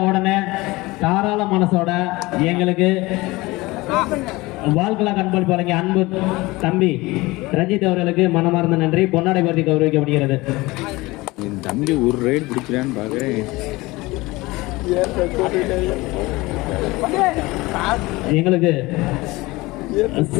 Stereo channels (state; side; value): quieter; right; 21.4 dB